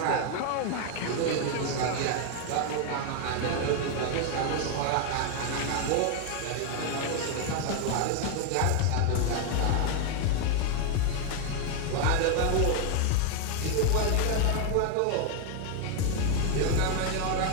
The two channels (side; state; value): both; different; correlation 0.01